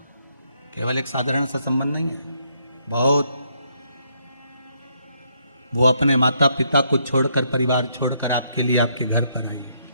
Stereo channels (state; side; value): inverted; both; correlation -0.73